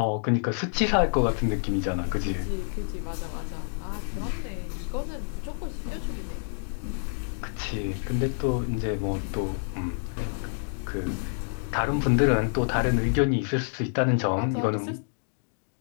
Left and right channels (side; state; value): right; silent; digital silence